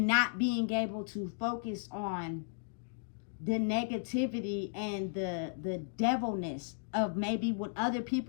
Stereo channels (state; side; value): silent; right; digital silence